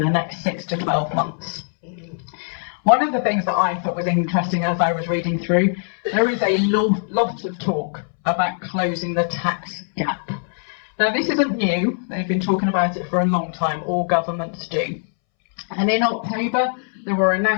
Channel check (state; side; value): silent; right; 64 dB below the other